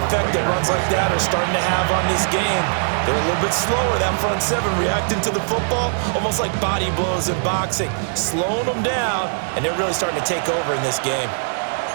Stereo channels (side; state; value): left; silent; digital silence